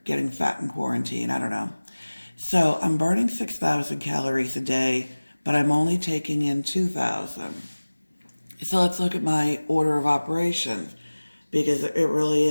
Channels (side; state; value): both; inverted; correlation -1.00